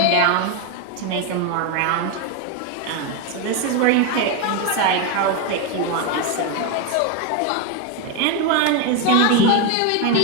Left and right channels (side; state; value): both; different; correlation 0.02